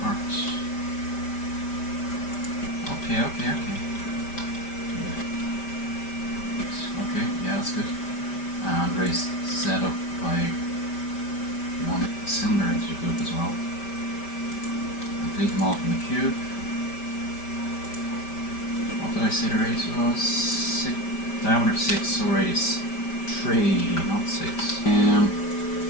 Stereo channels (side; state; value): right; late; 5.1 ms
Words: Okay, okay, okay. Okay, yeah, that's good. And raise Z up by one cylinder into the group as well. Delete them all from the cube. What did I say the radius was? 6, diameter 6, so radius 3, not 6.